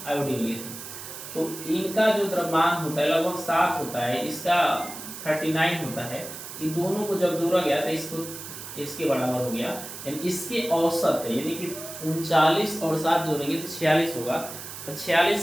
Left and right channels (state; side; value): noise; right; hiss, 11 dB below the sound